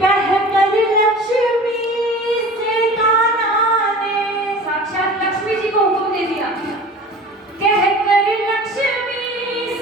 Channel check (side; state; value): both; normal; correlation 0.40